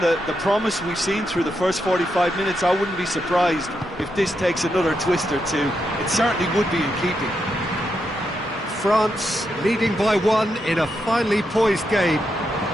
promise we've seen through the first 45 minutes, I wouldn't be surprised if this takes another twist or two. It certainly would be in keeping. France leading by 1 in a finely poised game.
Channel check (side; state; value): both; normal; correlation 0.83